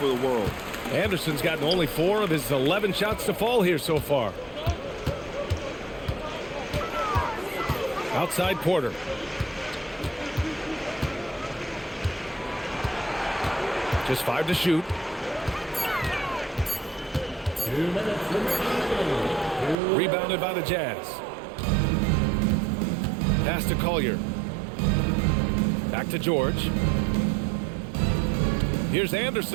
the world. Anderson's gotten only 4 of his 11 shots to fall here so far. Outside Porter. Just 5 to shoot. Rebounded by the Jazz. Pass to Collier. Back to George. Here's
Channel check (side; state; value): left; drops out; at 19.8 s